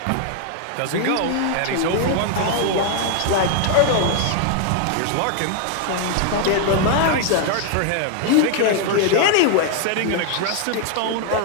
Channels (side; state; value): both; different; correlation 0.00